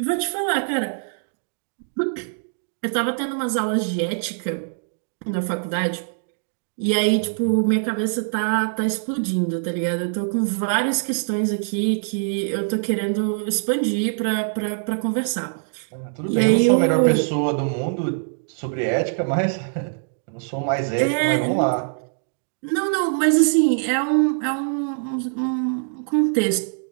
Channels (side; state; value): left; silent; digital silence